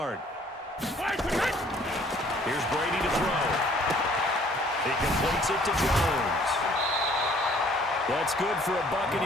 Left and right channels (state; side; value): normal; both; correlation 0.58